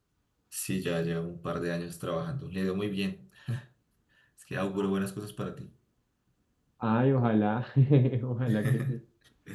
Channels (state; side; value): identical; both; correlation 1.00